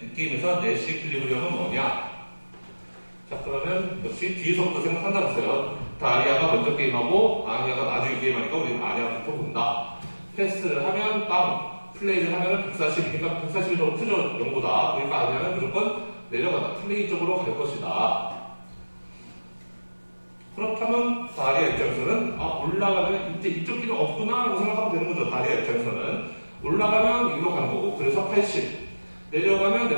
게임에서 내시 이퀄리브리엄은 뭐냐? 자, 그러면 역시 뒤에서부터 생각한다고 했어요. 다리아가 먼저 게임하고 아니아가 나중에 게임하니까 우리는 아니아부터 본다. 패스를 하면 빵, 플레이를 하면 140이니까 140이 더 크죠, 0보다. 그러니까 아니아는 무조건 내려간다. 플레이 쪽으로 갈 것이다. 그렇다면 다리아 입장에서는 올라가면 이제 이쪽 길은 없구나 라고 생각하면 되는 거죠. 다리아 입장에서는 올라가면 이리로 가는 거고, 그래서 80 내려가면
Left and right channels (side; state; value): both; inverted; correlation -1.00